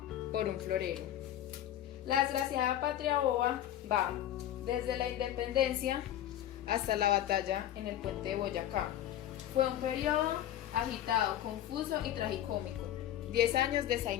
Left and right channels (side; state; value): right; quieter; 11.9 dB